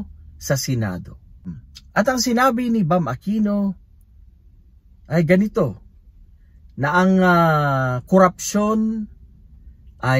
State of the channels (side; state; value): both; identical; correlation 1.00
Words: sa Senado. At ang sinabi ni Bam Aquino ay ganito, na ang korupsyon